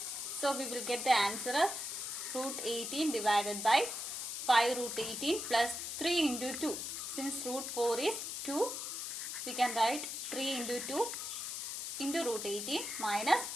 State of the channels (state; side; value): noise; left; hiss, 4 dB below the sound